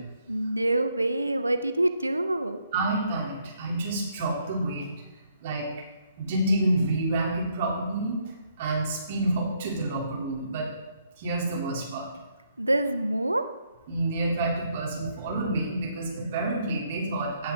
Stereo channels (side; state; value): both; inverted; correlation -0.72